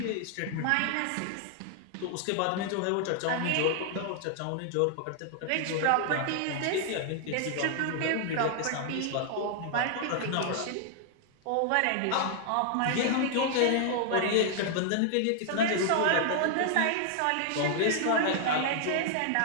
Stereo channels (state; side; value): different; both; correlation 0.00